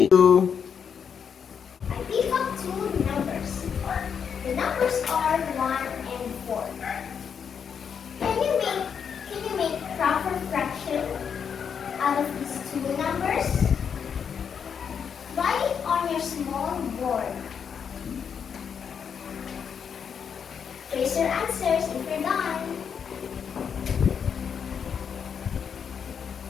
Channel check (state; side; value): quieter; right; 7.2 dB